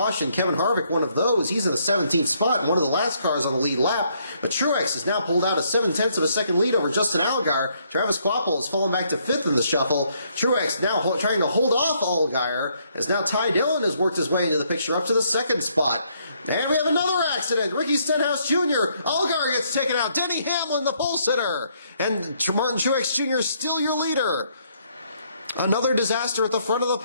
Kevin Harvick, one of those. He's in the 17th spot, and one of the last cars on the lead lap. But Truex has now pulled out a 7/10 of a second lead over Justin Allgaier. Travis Kvapil has fallen back to 5th in the shuffle. Truex now trying to hold off Allgaier, as now Ty Dillon has worked his way into the picture up to the 2nd spot. And we have another accident. Ricky Stenhouse Jr. Allgaier gets taken out. Denny Hamlin, the pole sitter. And Martin Truex Jr. is still your leader. Another disaster at the front of the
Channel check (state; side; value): inverted; both; correlation -0.70